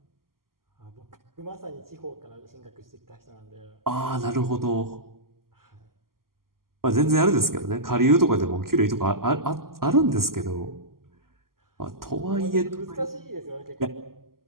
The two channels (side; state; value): left; late; 0.92 ms